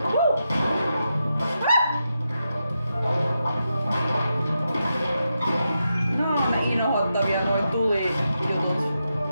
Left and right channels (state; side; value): inverted; both; correlation -0.87